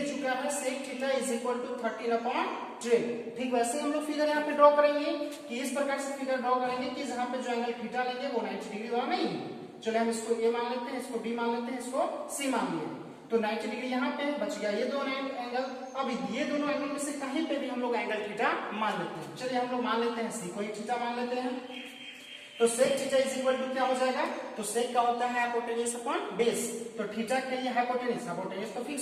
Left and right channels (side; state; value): both; identical; correlation 1.00